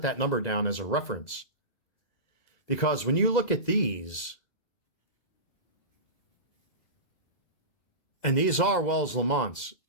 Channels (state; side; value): late; right; 2.0 ms